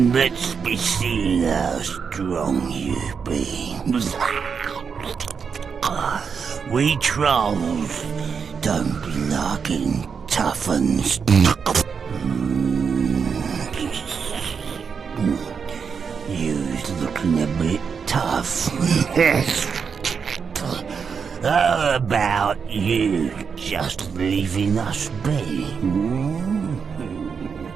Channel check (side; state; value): left; quieter; 6.2 dB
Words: let's be seeing how strong you be. We trolls don't be liking tough uns. You's looking a bit tough. How about you just leaving us be?